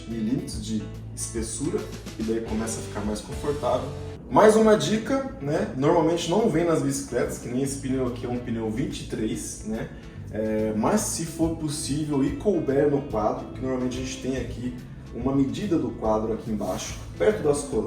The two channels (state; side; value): identical; both; correlation 1.00